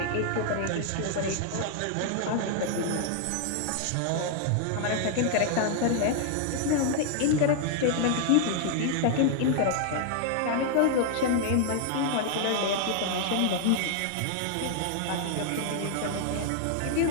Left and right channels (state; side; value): different; both; correlation 0.00